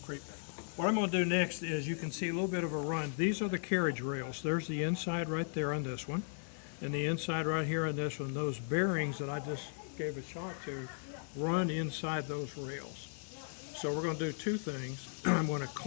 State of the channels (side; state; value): right; silent; 53 dB below the other